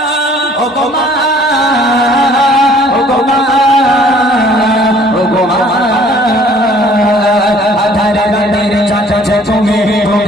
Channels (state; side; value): normal; both; correlation 0.56